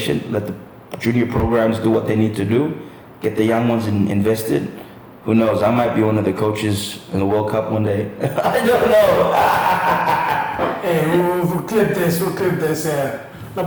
let the junior programs do what they need to do, get the young ones invested. Who knows? I might be one of the coaches in the World Cup one day. I don't know. Hey, we'll clip this. Yeah. No,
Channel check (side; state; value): both; identical; correlation 1.00